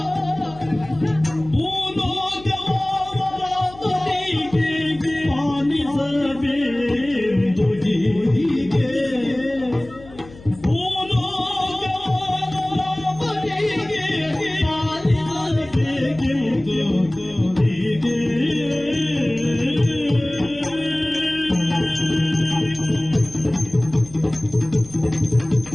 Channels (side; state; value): left; noise; hum, 20 dB below the sound